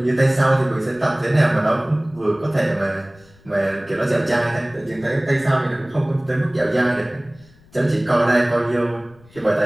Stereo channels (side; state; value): left; noise; rumble, 28 dB below the sound